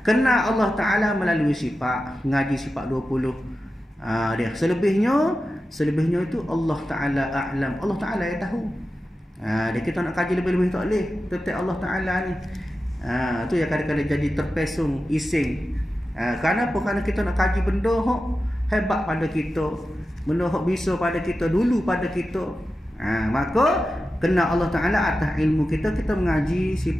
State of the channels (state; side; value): normal; both; correlation 0.92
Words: Kenal Allah Ta'ala melalui sifat. Ngaji sifat 20. Dia selebihnya itu Allah Ta'ala a'lam. Allah Ta'ala yang tahu. Dia kita nak kaji lebih-lebih tak boleh. Tetap Allah Ta'ala ni. Tu yang kadang-kadang jadi terpesong, ising. Kenapa? Kerana kita nak kaji benda hebat pada kita, benda bisa pada kita, dulu pada kita. Maka kenal Allah Ta'ala atas ilmu kita. Kita mengaji